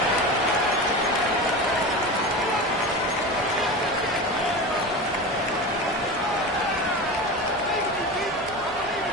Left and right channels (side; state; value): both; normal; correlation 0.27